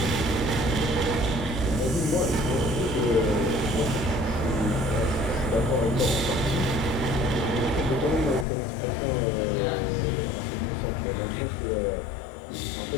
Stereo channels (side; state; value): right; drops out; at 8.5 s